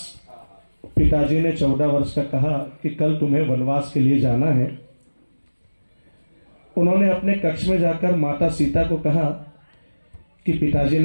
पिताजी ने 14 वर्ष का कहा कि कल तुम्हें वनवास के लिए जाना है। उन्होंने अपने कक्ष में जाकर माता सीता को कहा कि पिताजी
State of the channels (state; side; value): inverted; both; correlation -1.00